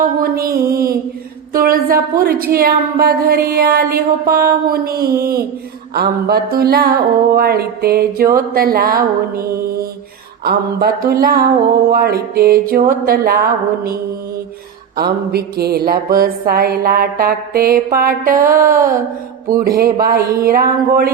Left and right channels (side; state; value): left; quieter; 7.7 dB